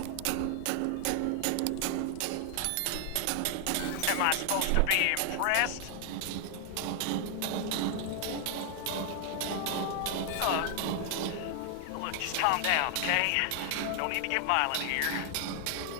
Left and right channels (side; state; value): both; different; correlation 0.00